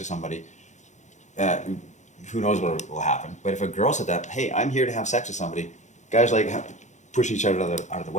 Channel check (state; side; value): late; right; 0.34 ms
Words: somebody, who knows what will happen. But if a girl said that, hey, I'm here to have sex with somebody, guys like push each other out of the